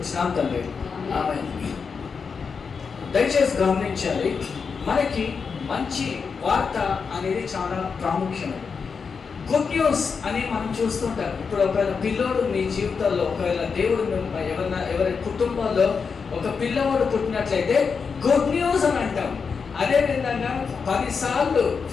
తండ్రి. ఆమేన్. దయచేసి గమనించాలి, మనకి మంచి వార్త అనేది చాలా ప్రాముఖ్యమైనది. గుడ్ న్యూస్ అని మనం చూస్తుంటాం. ఇప్పుడు ఒకవేళ పిల్లోడు మీ జీవితాల్లో, ఒకవేళ దేవుడు ఎవరి కుటుంబాల్లో ఒక పిల్లవాడు పుట్టినట్లయితే గుడ్ న్యూస్ అని అంటాం. అదేవిధంగా 10 సార్లు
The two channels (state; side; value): quieter; right; 5.6 dB